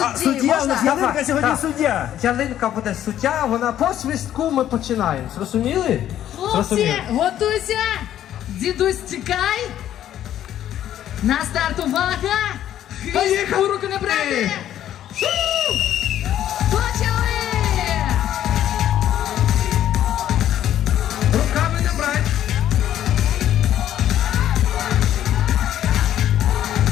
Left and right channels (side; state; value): right; quieter; 11.5 dB